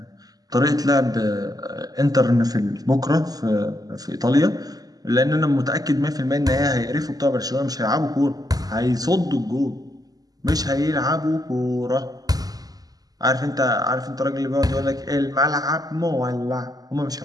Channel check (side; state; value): left; late; 0.18 ms